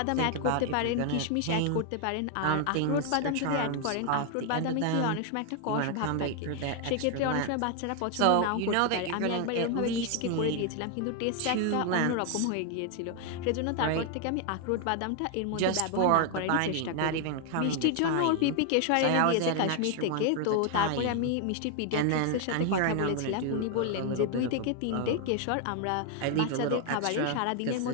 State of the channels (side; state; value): both; different; correlation 0.00